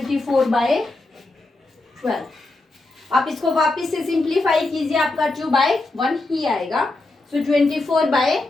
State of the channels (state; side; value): quieter; right; 3.0 dB